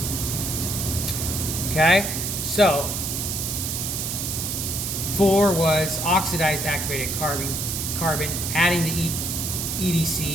Okay, so 4 was oxidized activated carbon, adding the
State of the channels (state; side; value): noise; right; hiss, 3 dB below the sound